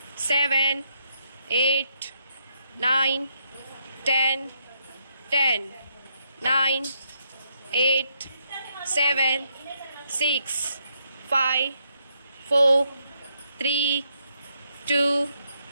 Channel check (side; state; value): both; inverted; correlation -0.76